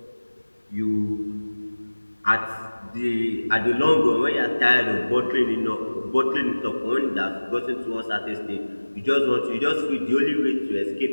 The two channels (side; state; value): both; inverted; correlation -1.00